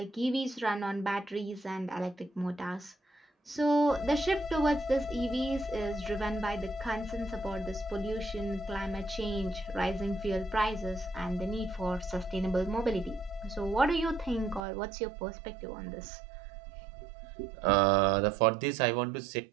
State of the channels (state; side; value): drops out; left; at 14.7 s